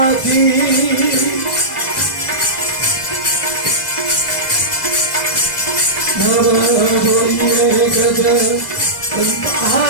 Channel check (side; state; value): right; late; 2.1 ms